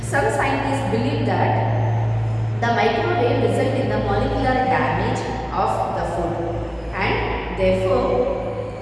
Some scientists believe that the microwave results in the molecular damage of the food and therefore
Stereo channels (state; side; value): identical; both; correlation 1.00